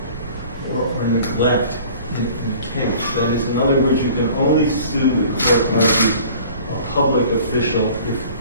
neglect in the case. That is, in other words, you can only sue, the court argues, a public official if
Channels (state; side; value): inverted; both; correlation -0.48